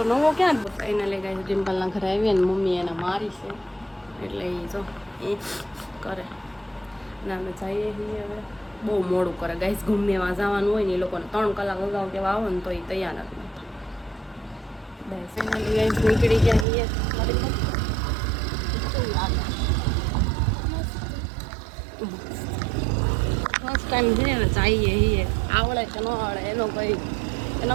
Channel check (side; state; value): left; drops out; at 16.7 s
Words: નવો ક્યાં એને લઈ ગયા છે? ડિમ્પલના ઘરે આવીએ ને મમ્મી એને મારી છે, એટલે એ જો એ કરે ને અમે જઈએ છીએ. હવે બહુ મોડું કરે ગાઈસ. ગમે એમાં જવાનું હોય ને એ લોકોને 3 કલાક અગાઉ કેવા આવે ને તો એ તૈયાર નથી. બસ ફાઇનલી ગાઈસ નીકળી ગયા છીએ. ફર્સ્ટ ટાઈમ છે ને જઈએ છીએ. આવડે કે ન આવડે એનો